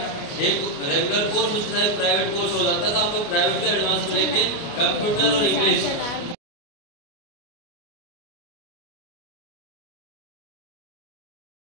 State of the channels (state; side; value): late; right; 29 ms